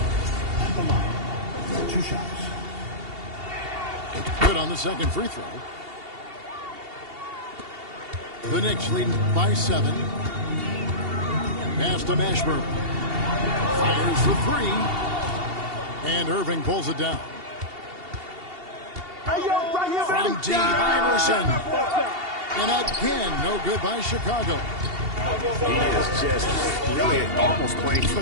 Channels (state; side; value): late; left; 2.7 ms